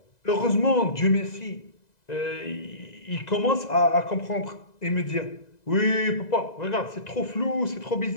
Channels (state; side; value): late; right; 2.0 ms